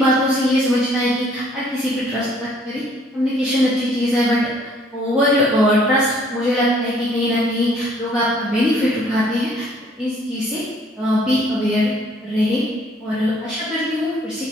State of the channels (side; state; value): both; normal; correlation 0.61